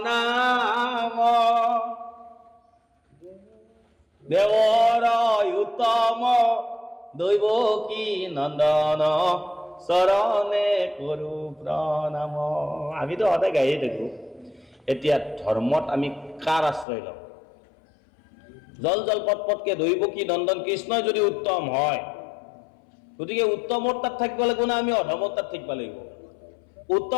নাম, দেৱৰ উত্তম দৈৱকী নন্দন, চৰণে কৰো প্ৰণাম। আমিতো সদায় গায়ে থাকো। এতিয়া ধৰ্মত আমি কাৰ আশ্ৰয় লওঁ? জল জল পট পটকে দৈৱকী নন্দন কৃষ্ণই যদি উত্তম হয়, গতিকে উত্তমৰ তাত থাকিব লাগিব না আমি অধমৰ তাত থাকিব লাগিব?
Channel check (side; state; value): right; drops out; at 16.9 s